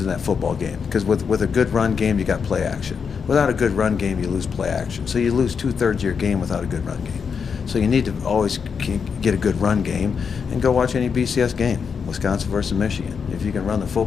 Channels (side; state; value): right; quieter; 6.2 dB